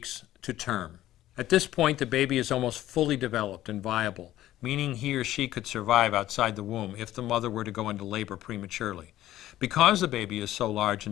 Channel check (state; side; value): quieter; right; 14.1 dB